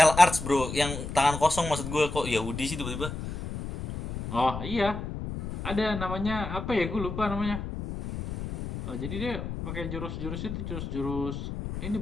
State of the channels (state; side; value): noise; left; rumble, 6 dB below the sound